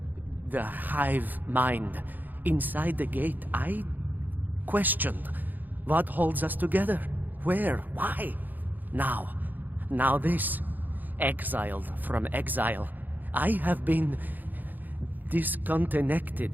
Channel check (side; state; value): left; late; 0.086 ms